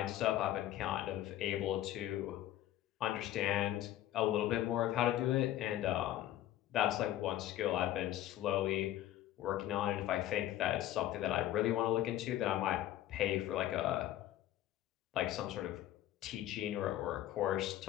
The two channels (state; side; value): quieter; right; 13.4 dB